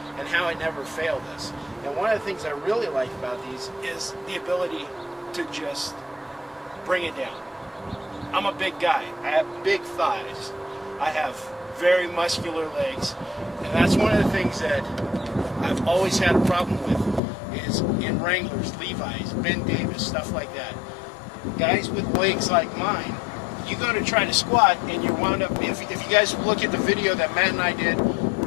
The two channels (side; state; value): right; drops out; at 17.2 s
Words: and how it never failed us. And one of the things I really like about these is the ability to just bring it down. I'm a big guy. I have big thighs. I have very muscular legs. And that's one of the things that I've always had a problem with is in Wranglers, Levi's, Ben Davis, stuff like that. Guys with legs like mine, you go to try to squat and you wound up, if you guys look at the video that Matt and I did